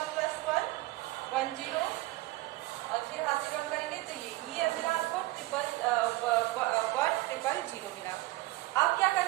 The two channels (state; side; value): quieter; left; 19.1 dB